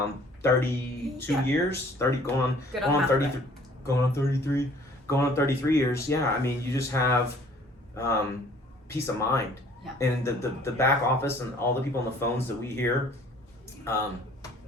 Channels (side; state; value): both; normal; correlation 0.54